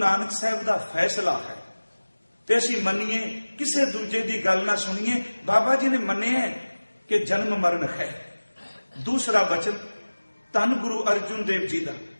साहब का फैसला है ते असीं मन्नीए, किसी दूजे की गल ना सुनीए। बाबा जी ने मन्निया कि जन्म मरण है। दूसरा वचन धन गुरु अर्जुन देव जी का,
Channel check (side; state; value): both; inverted; correlation -1.00